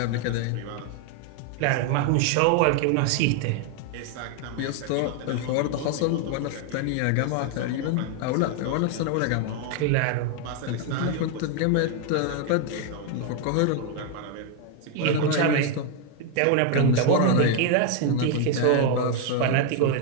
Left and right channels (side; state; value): both; different; correlation 0.01